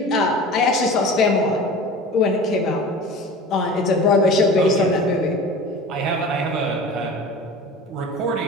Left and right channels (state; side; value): normal; both; correlation 0.37